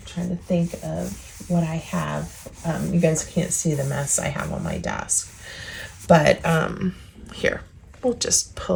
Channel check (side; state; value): both; identical; correlation 1.00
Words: to think of what I have. You guys can't see the mess I have on my desk, but here, we'll just